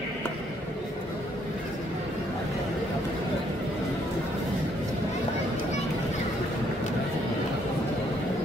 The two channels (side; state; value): both; normal; correlation 0.69